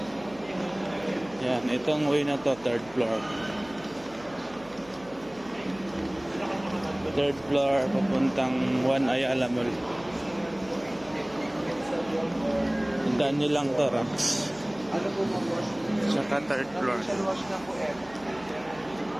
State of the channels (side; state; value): right; noise; hum, 23 dB below the sound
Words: Yan, itong way na to, third floor. Third floor, papuntang Juan Ayala Mall. Tandaan nyo lang to, Rams. Tsaka third floor.